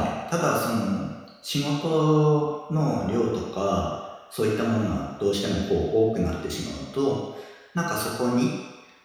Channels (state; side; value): identical; both; correlation 1.00